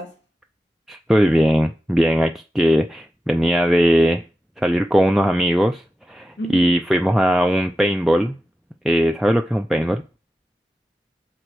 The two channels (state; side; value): normal; both; correlation 0.92